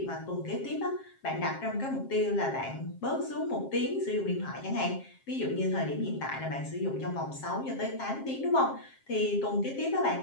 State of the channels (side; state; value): right; late; 7.5 ms